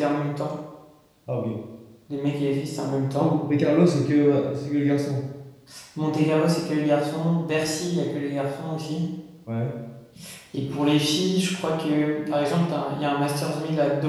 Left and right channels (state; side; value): identical; both; correlation 1.00